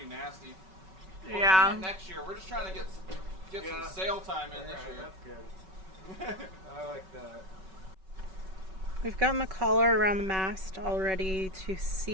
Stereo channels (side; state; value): left; late; 5.3 ms